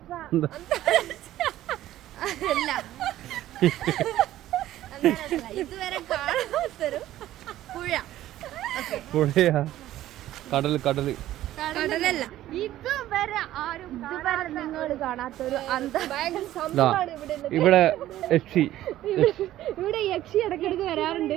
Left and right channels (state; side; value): quieter; left; 13.9 dB